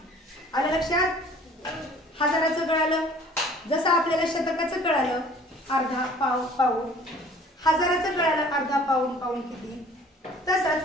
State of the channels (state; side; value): normal; both; correlation 0.51